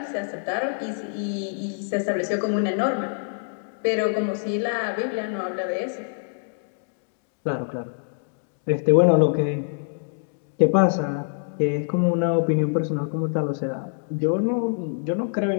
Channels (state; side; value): silent; right; digital silence